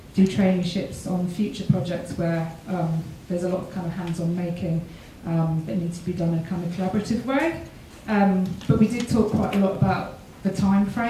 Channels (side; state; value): both; identical; correlation 1.00